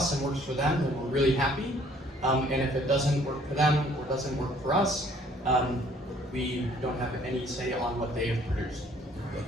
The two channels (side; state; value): both; normal; correlation 0.59